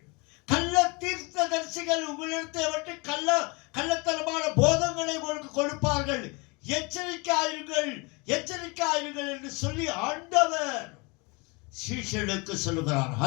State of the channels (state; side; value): quieter; right; 28.3 dB